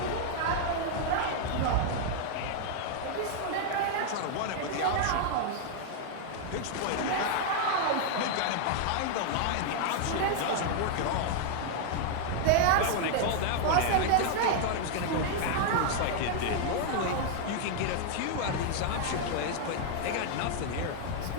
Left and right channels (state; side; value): different; both; correlation 0.00